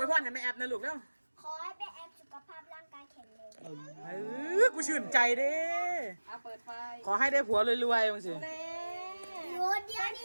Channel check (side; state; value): both; inverted; correlation -1.00